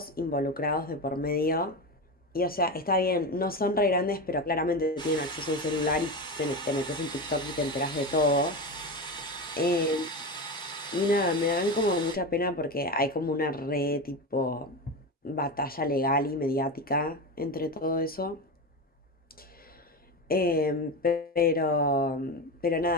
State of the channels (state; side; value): normal; both; correlation 0.20